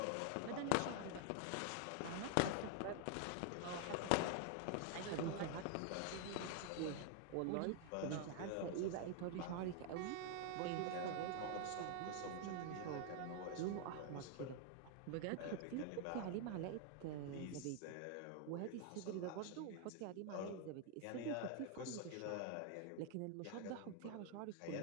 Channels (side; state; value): both; different; correlation 0.00